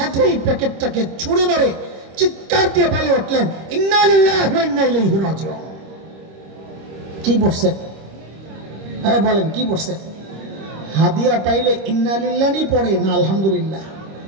এই প্যাকেটটাকে ছুঁড়ে মেরে চিৎকার দিয়ে বলে উঠলেন, ইন্না লিল্লাহি ওয়া ইন্না ইলাইহি রাজিউন। কি পড়ছেন? হ্যাঁ বলেন কি পড়ছেন? হাদিয়া পাইলে ইন্না লিল্লাহি পড়ে না আলহামদুলিল্লাহ?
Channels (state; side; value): late; left; 26 ms